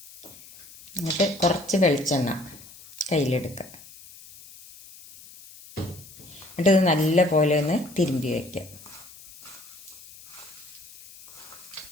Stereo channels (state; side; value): noise; left; hiss, 19 dB below the sound